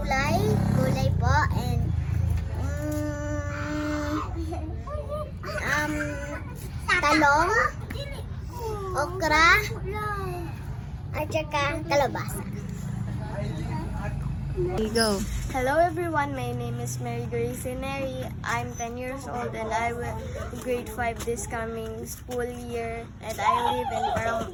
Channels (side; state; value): both; identical; correlation 1.00